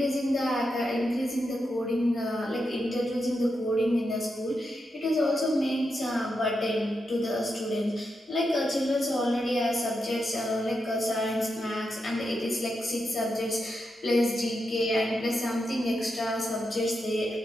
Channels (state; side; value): normal; both; correlation 0.86